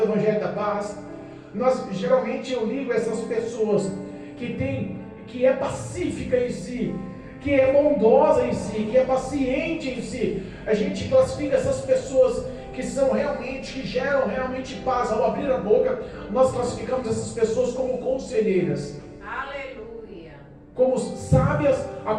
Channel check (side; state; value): both; identical; correlation 1.00